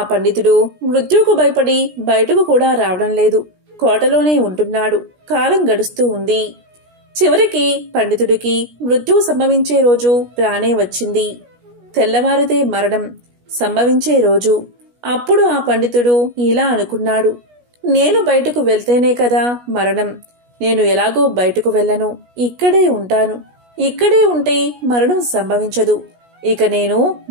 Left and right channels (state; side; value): late; left; 17 ms